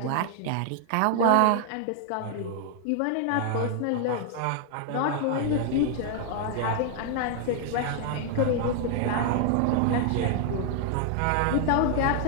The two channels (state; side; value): different; both; correlation 0.00